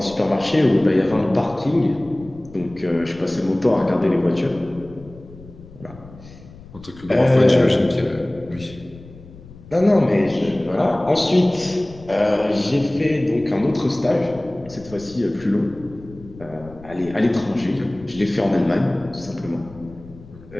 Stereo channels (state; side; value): noise; left; rumble, 20 dB below the sound